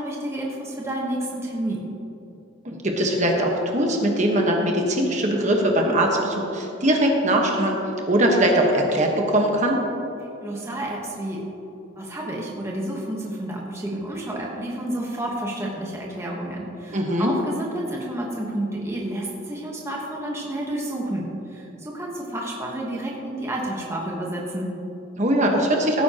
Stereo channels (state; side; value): normal; both; correlation 0.39